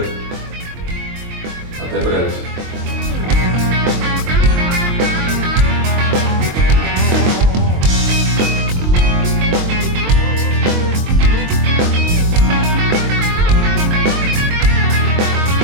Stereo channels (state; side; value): late; left; 23 ms